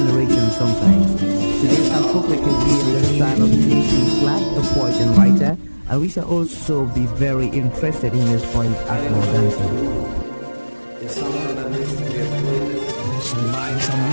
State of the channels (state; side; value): inverted; both; correlation -1.00